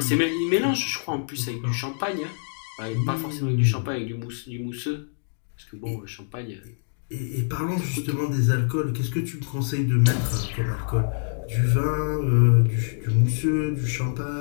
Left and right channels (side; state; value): right; silent; digital silence